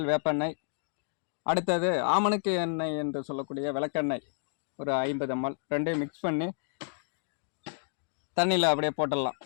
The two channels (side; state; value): right; silent; digital silence